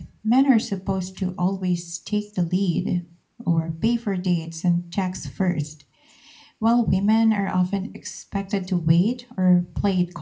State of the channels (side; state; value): both; identical; correlation 1.00